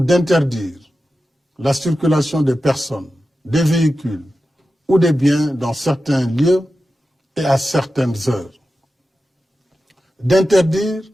la circulation des personnes, des véhicules ou des biens dans certains lieux et à certaines heures. D'interdire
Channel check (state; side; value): normal; both; correlation 0.92